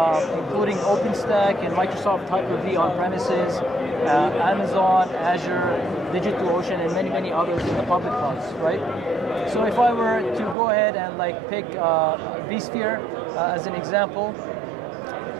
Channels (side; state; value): left; drops out; at 10.6 s